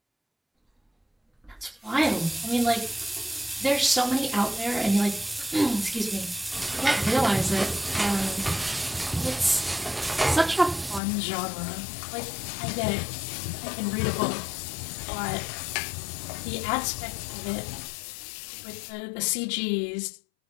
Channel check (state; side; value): drops out; right; at 11.0 s